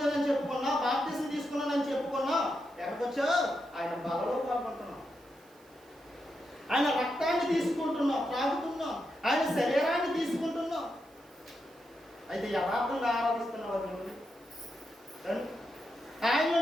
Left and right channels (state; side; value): noise; right; hiss, 29 dB below the sound